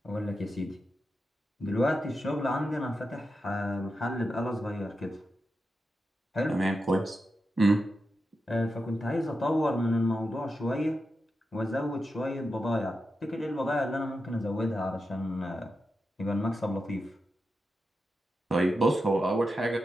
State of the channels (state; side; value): normal; both; correlation 0.88